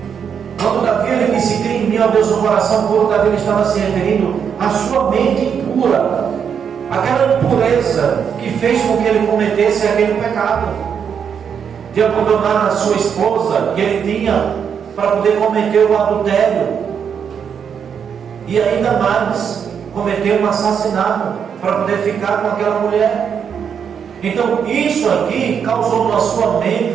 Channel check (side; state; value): left; quieter; 7.4 dB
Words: Quando Davi ele disse: cria em mim, ó Deus, um coração puro, Davi ele estava se referindo à sua mente pura, aquela impureza que fez com que ele cometesse aquele pecado de abandonar a sua esposa que ele tinha para poder cometer o adultério, e ainda mais cometer um assassinato para poder ficar com aquela mulher. Então isso aqui causou na sua